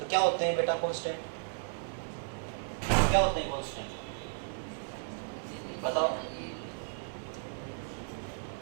क्या होते हैं बेटा कांस्टेंट, क्या होते हैं कांस्टेंट, बताओ।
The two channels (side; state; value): left; silent; digital silence